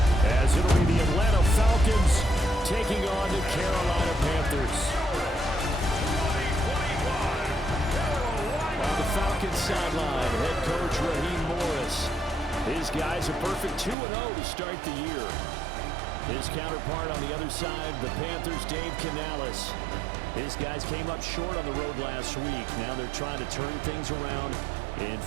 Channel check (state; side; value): drops out; left; at 14.0 s